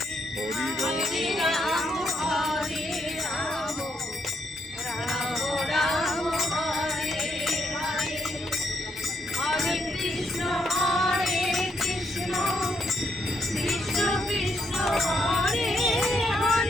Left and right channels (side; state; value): both; normal; correlation 0.77